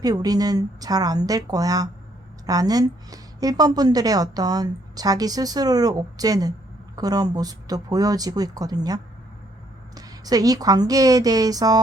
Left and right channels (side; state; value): both; normal; correlation 0.68